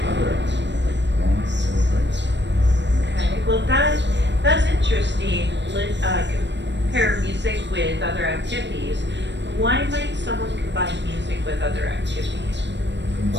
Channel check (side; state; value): left; late; 0.52 ms